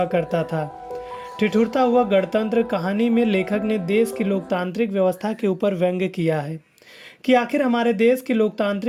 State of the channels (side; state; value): both; identical; correlation 1.00